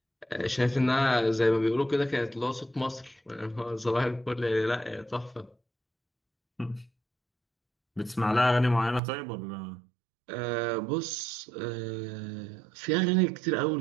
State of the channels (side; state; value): left; drops out; at 9.0 s